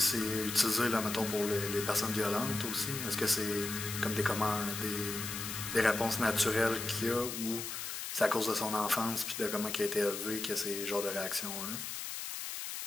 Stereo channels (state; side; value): noise; left; hiss, 6 dB below the sound